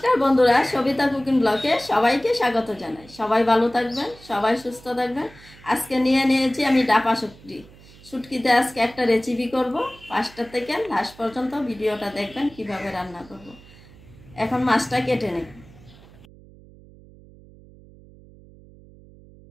বন্ধুরা, সবিতা কুকিং ব্লগে সবাইকে স্বাগত জানাই। সবাই ভালো থাকবেন, সবাই সুস্থ থাকবেন। আজকে নিয়েছি আমি ডাপা শুটকি। শুটকিতে আজকে একটা রেসিপি করব। ফার্স্ট থেকে লাস্ট পর্যন্ত ভিডিওটা দেখবেন কিভাবে রান্না করব। এখন মাছটা কেটে নেব।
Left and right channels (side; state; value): right; noise; hum, 23 dB below the sound